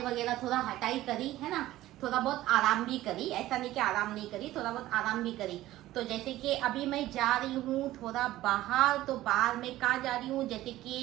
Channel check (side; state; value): left; quieter; 15.5 dB